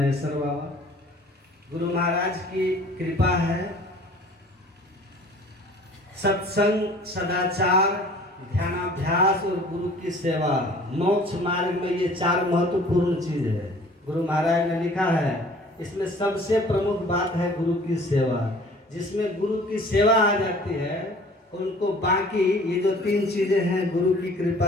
बाबा, गुरु महाराज की कृपा है। सत्संग, सदाचार, ध्यानाभ्यास और गुरु की सेवा, मोक्ष मार्ग में ये चार महत्वपूर्ण चीज है। गुरु महाराज ने लिखा है इसमें सबसे प्रमुख बात है गुरु की सेवा। जिसमें गुरु की सेवा आ जाती है उनको बाकी ये जो तीन चीजें हैं गुरु की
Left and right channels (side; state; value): both; normal; correlation 0.50